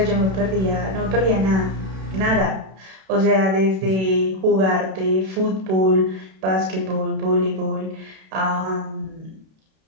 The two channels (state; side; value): late; left; 32 ms